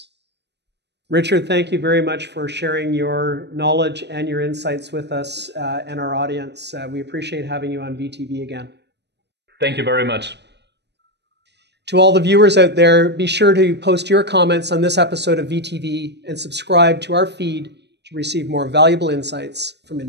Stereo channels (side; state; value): left; late; 0.50 ms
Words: Richard, thank you very much for sharing your knowledge and your insights with us and our audience. We appreciate having you on VTV again. Thank you very much. To all the viewers out there, be sure to post your comments on this episode of VTV and subscribe to our feed to receive more valuable insights from